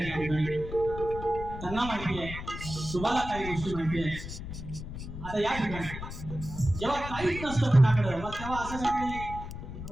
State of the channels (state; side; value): noise; left; rumble, 9 dB below the sound